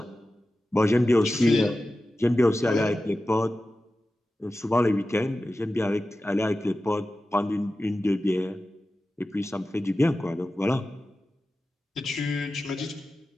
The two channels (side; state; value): both; normal; correlation 0.94